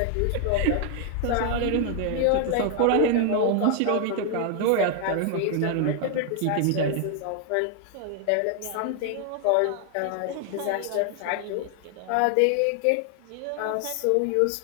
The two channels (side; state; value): both; different; correlation 0.00